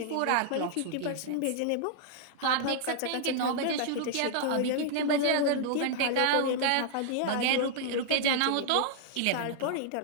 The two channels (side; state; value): both; different; correlation -0.01